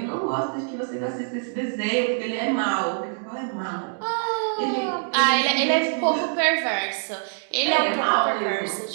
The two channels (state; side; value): silent; left; digital silence